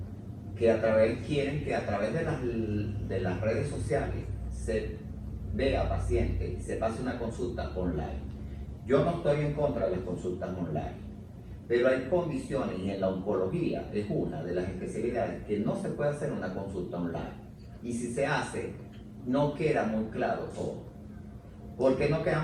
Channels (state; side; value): identical; both; correlation 1.00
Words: que quieren que a través de las redes sociales se vea paciente y se pase una consulta online. Yo no estoy en contra de las consultas online, pero hay condiciones, y en la oncología es una de las especialidades que no se puede hacer una consulta online. Y si se hace, no queda muy claro todo. ¿Por qué no queda